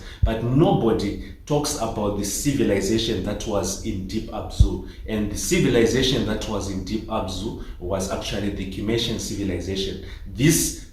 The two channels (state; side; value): identical; both; correlation 1.00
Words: but nobody talks about the civilization that was in Deep Abzu. And the civilization that was in Deep Abzu was actually the Kimmershian civilization. This